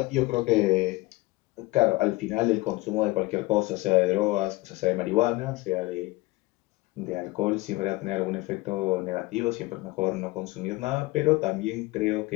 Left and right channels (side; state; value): right; quieter; 20.7 dB